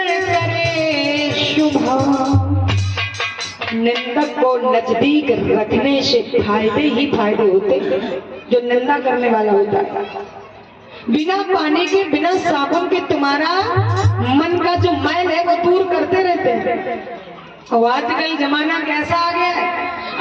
करे शुभा। निंदक को नजदीक रखने से फायदे ही फायदे होते, जो निंदा करने वाला होता है। बिना पानी के, बिना साबुन के तुम्हारा मन का जो मैल है वो दूर करते रहते हैं। और आजकल जमाना कैसा आ गया है,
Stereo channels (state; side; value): identical; both; correlation 1.00